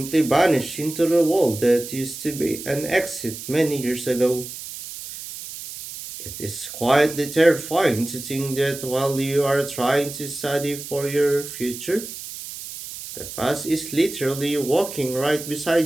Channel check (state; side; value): noise; right; hiss, 11 dB below the sound